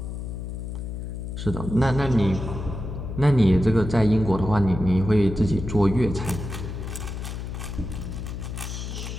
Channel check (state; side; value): noise; left; hum, 6 dB below the sound